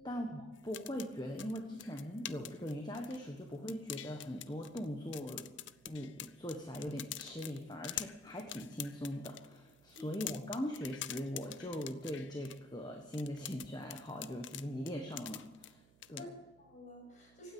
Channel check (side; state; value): right; noise; hum, 25 dB below the sound